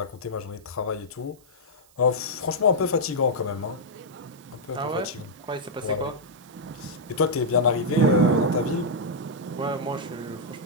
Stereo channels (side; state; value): right; noise; hiss, 29 dB below the sound